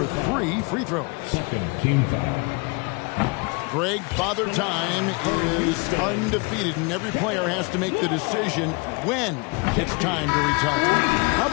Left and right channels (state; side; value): quieter; right; 29.3 dB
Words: 3 free throws. Second team foul. Greg, Father Time is undefeated, and every player has to make the decision when it's time to retire. How